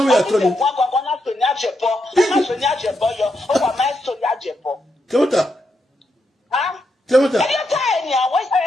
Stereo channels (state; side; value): normal; both; correlation 0.82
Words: way at all. Temota. Huh? Temota.